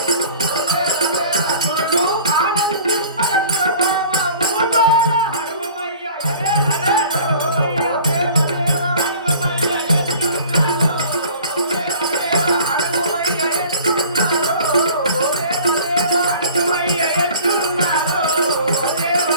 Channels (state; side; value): inverted; both; correlation -0.46